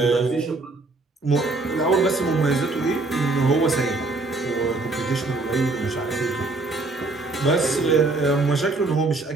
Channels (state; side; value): quieter; left; 3.3 dB